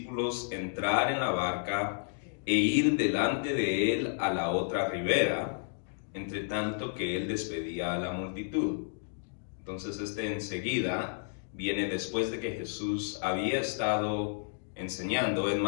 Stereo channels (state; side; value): silent; right; digital silence